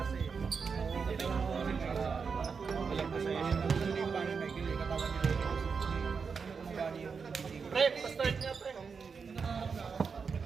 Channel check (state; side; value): quieter; left; 5.6 dB